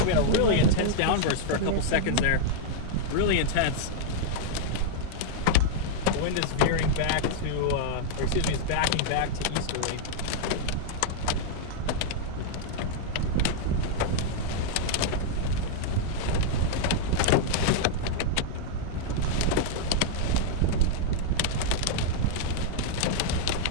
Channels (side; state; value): both; different; correlation -0.01